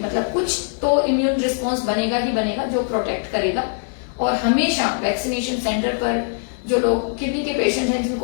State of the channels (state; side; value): silent; right; digital silence